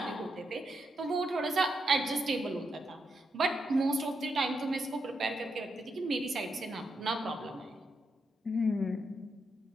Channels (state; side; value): normal; both; correlation 0.82